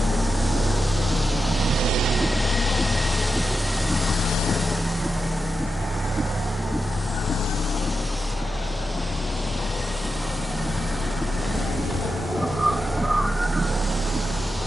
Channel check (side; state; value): both; normal; correlation 0.89